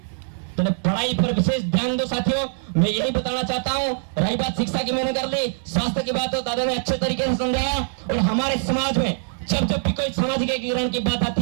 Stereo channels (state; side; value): silent; left; digital silence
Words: तो पढ़ाई पर विशेष ध्यान दो साथियों। मैं यही बताना चाहता हूँ। रही बात शिक्षा की मैंने कर ली, स्वास्थ्य की बात हो दादा ने अच्छे तरीके से समझाया। और हमारे समाज में जब भी कोई सामाजिक एकीकरण की बात आती